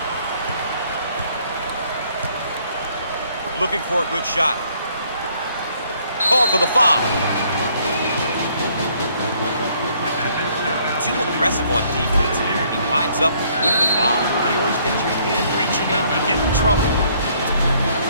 Looking for a good shot. Called for the foul. Too aggressive on defense here. He winds up with the foul. You always get your hand reaching in, you get in trouble.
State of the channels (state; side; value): inverted; both; correlation -0.64